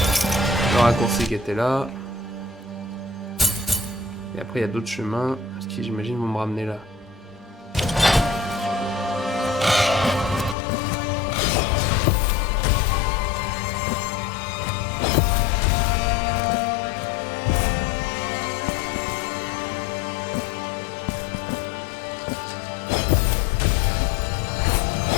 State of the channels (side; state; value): right; drops out; at 10.6 s